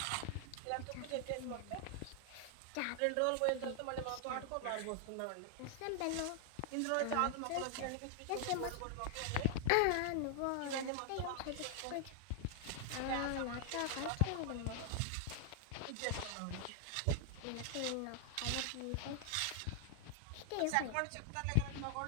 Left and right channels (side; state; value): both; different; correlation 0.00